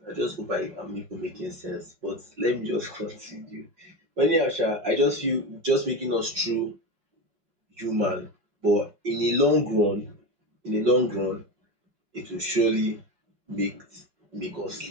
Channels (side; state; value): left; late; 5.5 ms